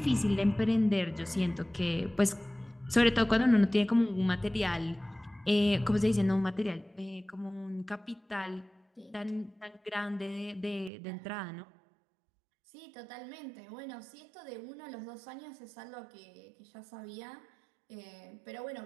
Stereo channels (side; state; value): left; drops out; at 10.9 s